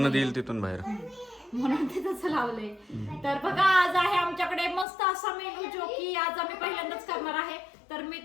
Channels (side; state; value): right; drops out; at 4.9 s